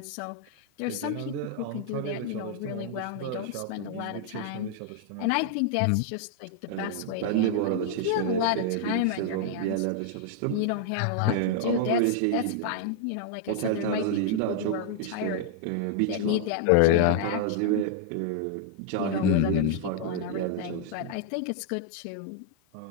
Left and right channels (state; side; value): different; both; correlation -0.01